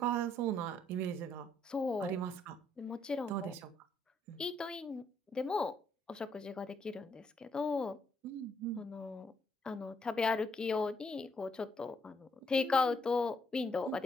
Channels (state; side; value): normal; both; correlation 0.72